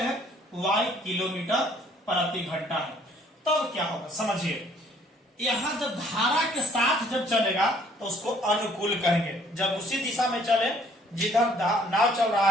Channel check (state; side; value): normal; both; correlation 0.60